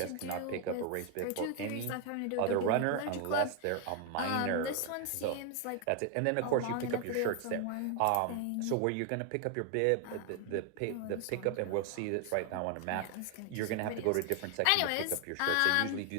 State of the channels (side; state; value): both; different; correlation 0.00